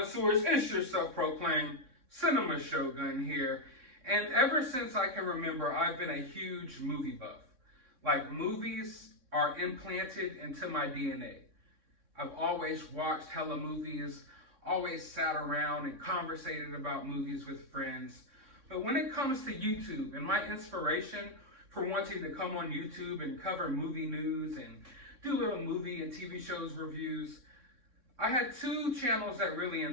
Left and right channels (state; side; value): late; left; 3.6 ms